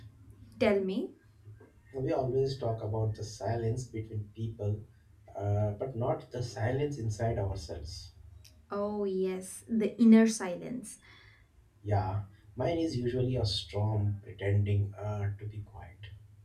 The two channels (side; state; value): both; identical; correlation 1.00